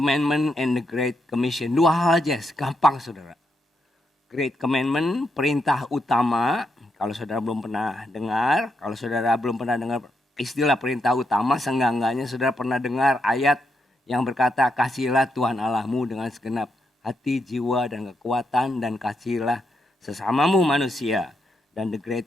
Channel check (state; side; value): normal; both; correlation 0.81